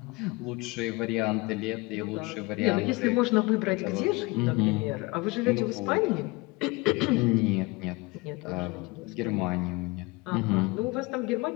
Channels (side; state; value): right; quieter; 24.8 dB